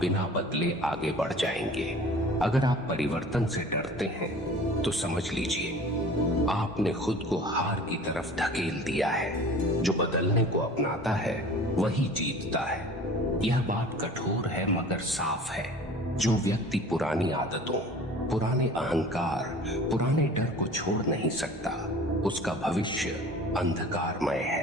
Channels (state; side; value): normal; both; correlation 0.44